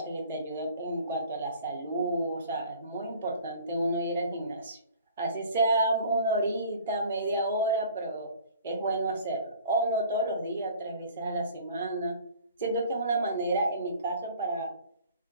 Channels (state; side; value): inverted; both; correlation -0.49